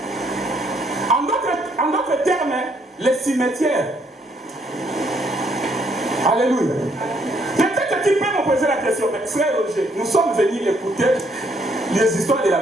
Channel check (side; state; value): both; normal; correlation 0.69